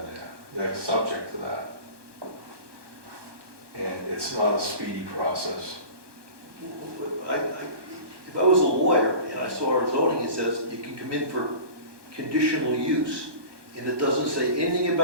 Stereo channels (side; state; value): left; late; 1.2 ms